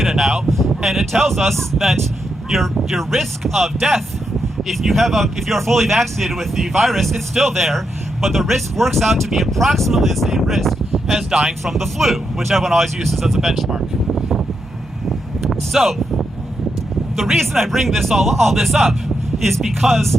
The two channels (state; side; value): normal; both; correlation 0.83